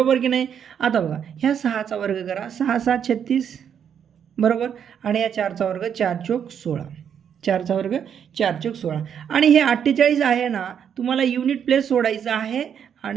की नाही. आता बघा, ह्या 6चा वर्ग करा. 6 7 36, बरोबर. आणि या 4चा वर्ग, 4 चोक 16. 4चा वर्ग 4 चोक 16. आणि हे 48 आहे ना, तुम्हाला युनिट प्लेस सोडायचं आहे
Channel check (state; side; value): quieter; left; 8.2 dB